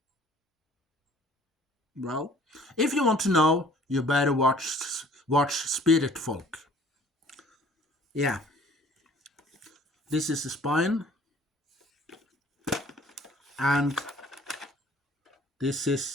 Well, if you want to know, you better watch Spirit Folk. Yeah. This is the spine. And this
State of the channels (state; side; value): normal; both; correlation 0.54